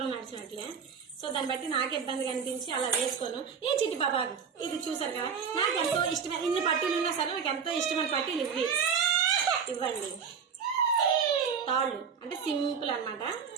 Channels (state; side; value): quieter; left; 6.6 dB